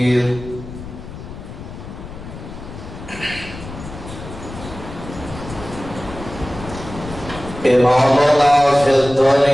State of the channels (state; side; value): noise; left; rumble, 12 dB below the sound